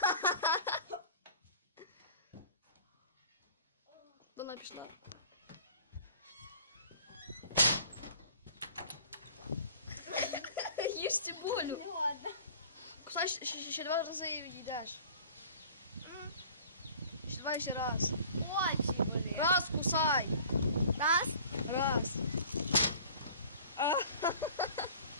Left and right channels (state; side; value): inverted; both; correlation -0.47